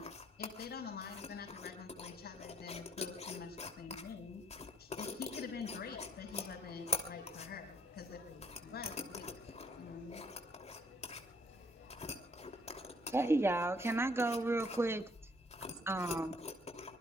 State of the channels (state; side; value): normal; both; correlation 0.66